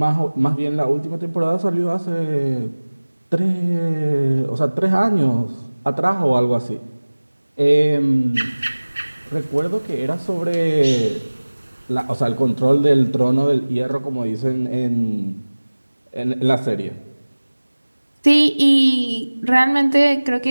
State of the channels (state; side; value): inverted; both; correlation -1.00